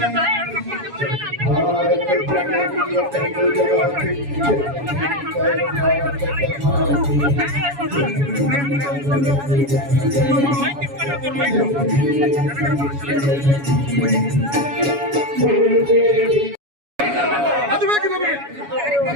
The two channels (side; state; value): left; late; 7.1 ms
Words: ಅದು ಬೇಕು ನಮಗೆ.